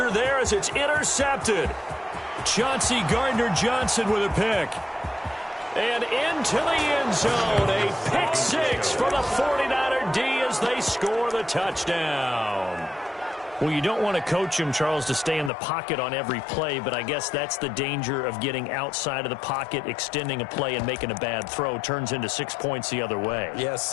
there as it's intercepted. Chauncey Gardner-Johnson with a pick. And into the end zone. A pick six for the 49er D as they score the touchdown. Well, you don't want to coach him, Charles, to stay in the pocket on every play, but I guess that's the danger of getting outside of the pocket, extending a play, and making a bad throw. Turns into 6 points the other way. Yeah,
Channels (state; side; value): drops out; right; at 15.5 s